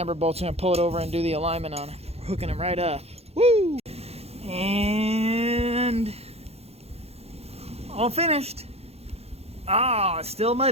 bolts, going to pull it over and do the alignment on it. We're hooking them right up. Woo! And all finished. Ah, it's still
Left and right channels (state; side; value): late; left; 0.30 ms